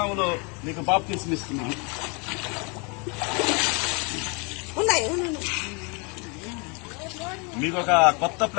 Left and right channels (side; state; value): right; quieter; 32.7 dB